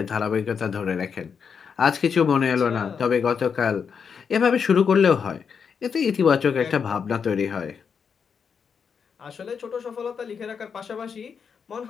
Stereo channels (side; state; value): right; quieter; 6.5 dB